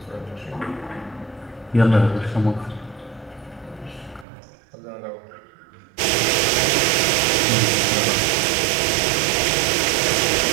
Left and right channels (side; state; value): left; drops out; at 4.2 s